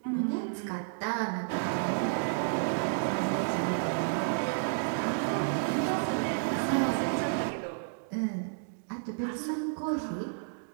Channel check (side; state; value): left; silent; digital silence